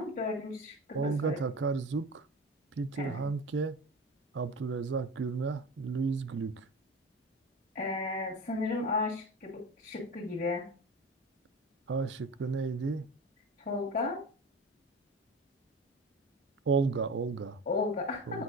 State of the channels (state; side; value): normal; both; correlation 0.31